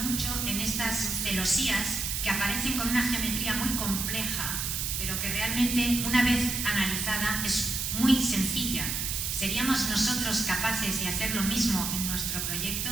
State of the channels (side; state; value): right; noise; hiss, 1 dB below the sound